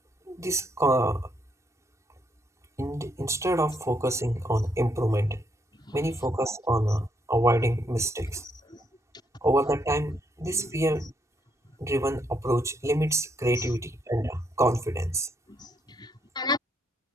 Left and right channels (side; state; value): both; normal; correlation 0.74